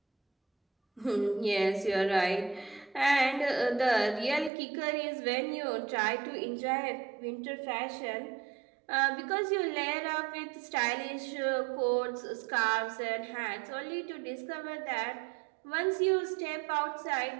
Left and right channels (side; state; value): left; drops out; at 4.5 s